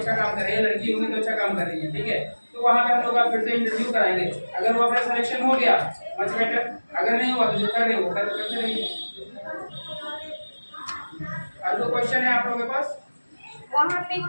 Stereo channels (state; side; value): inverted; both; correlation -1.00